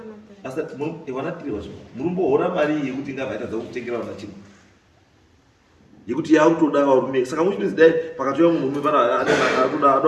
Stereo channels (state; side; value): identical; both; correlation 1.00